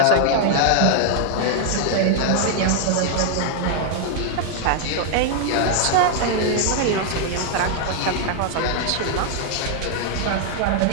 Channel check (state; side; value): different; both; correlation 0.00